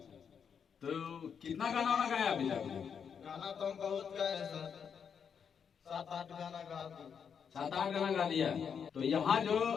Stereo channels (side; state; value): right; quieter; 7.0 dB